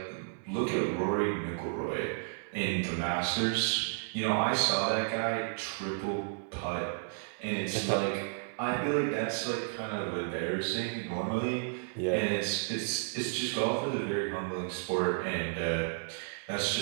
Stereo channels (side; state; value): left; silent; 56 dB below the other